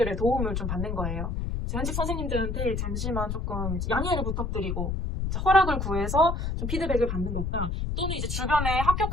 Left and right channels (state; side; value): noise; left; rumble, 2 dB below the sound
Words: 도움을 좀 받는 거예요. 현직 선생님들한테 잠시만 조금 양해를 부탁드리고 허락을 구해서 좀 피드백을 받는 것과 또는 이제 주변에